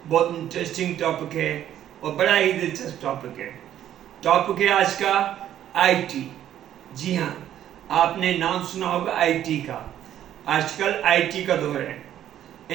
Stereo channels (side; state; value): left; quieter; 11.2 dB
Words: बहुत इंटरेस्टिंग टॉपिक है और बड़ा ही दिलचस्प टॉपिक है। टॉपिक है आज का आईटी। जी हाँ, आपने नाम सुना होगा आईटी का। आजकल आईटी का दौर है,